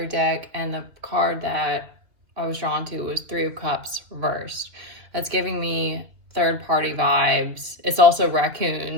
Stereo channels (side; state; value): left; late; 2.5 ms